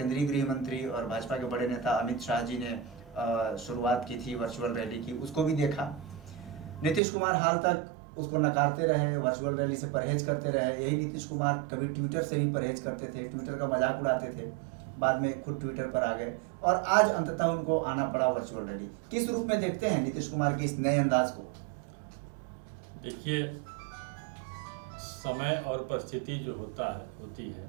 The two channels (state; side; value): drops out; left; at 7.0 s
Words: गृह मंत्री और भाजपा के बड़े नेता अमित शाह जी ने शुरुआत की थी वर्चुअल रैली की, उसको भी देखा। नीतीश कुमार हाल तक उसको नकारते रहे, वर्चुअल रैली से परहेज करते रहे। यही नीतीश कुमार कभी ट्विटर से भी परहेज करते थे, ट्विटर का मजाक उड़ाते थे, बाद में खुद ट्विटर पर आ गए और आज अंततः उनको आना पड़ा वर्चुअल रैली। किस रूप में देखते हैं नीतीश कुमार के इस नए अंदाज को? देखिए, समय और परिस्थिति जो होती है